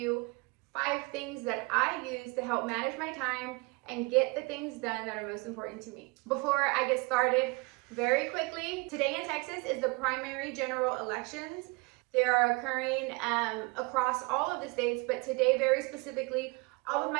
5 things that I use to help manage my time and get the things done that are most important to me. Before I get started, very quickly, today in Texas is the primary general elections. They are occurring across all of the states, but today very specifically, all of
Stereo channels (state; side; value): quieter; left; 27.8 dB